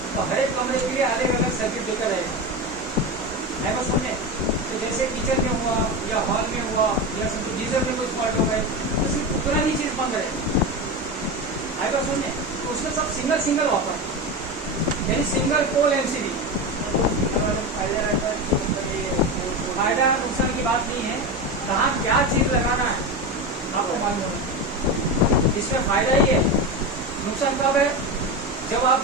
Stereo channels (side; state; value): both; normal; correlation 0.20